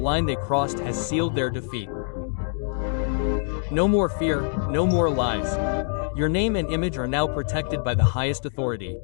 they crossed has sealed their defeat. No more fear, no more lies. Your name and image are now protected by the highest authority.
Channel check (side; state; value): right; silent; digital silence